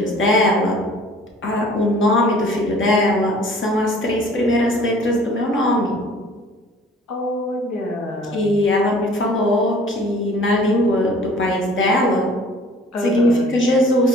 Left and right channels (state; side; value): normal; both; correlation 0.51